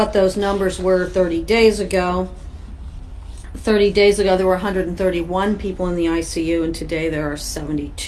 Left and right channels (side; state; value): both; identical; correlation 1.00